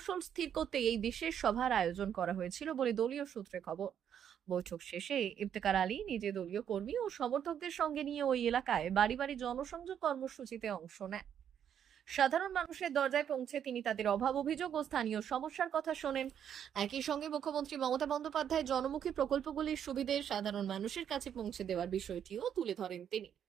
স্থির করতে এই বিশেষ সভার আয়োজন করা হয়েছিল বলে দলীয় সূত্রে খবর। বৈঠক শেষে ইফতেখার আলী নিজে দলীয় কর্মী ও সমর্থকদের সঙ্গে নিয়ে ওই এলাকায় বাড়ি বাড়ি জনসংযোগ কর্মসূচিতে অংশ নেন। সাধারণ মানুষের দরজায় পৌঁছে তিনি তাদের অভাব অভিযোগ ও স্থানীয় সমস্যার কথা শোনেন। একই সঙ্গে মুখ্যমন্ত্রী মমতা বন্দ্যোপাধ্যায় জনমুখী প্রকল্পগুলির সুবিধে সাধারণ মানুষের কাছে পৌঁছে দেওয়ার বিষয়টিও তুলে ধরেন তিনি।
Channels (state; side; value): quieter; left; 9.0 dB